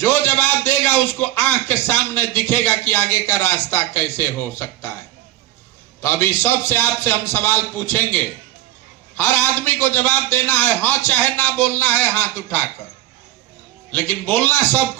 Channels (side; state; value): left; quieter; 14.5 dB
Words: जवाब देगा उसको आंख के सामने दिखेगा कि आगे का रास्ता कैसे हो सकता है। तो अभी सबसे आपसे हम सवाल पूछेंगे। हर आदमी को जवाब देना है, हाँ चाहे ना बोलना है हाथ उठाकर, लेकिन बोलना